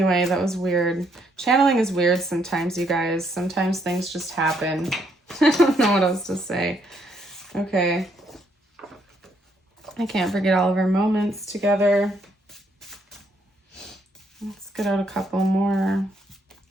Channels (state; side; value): normal; both; correlation 0.72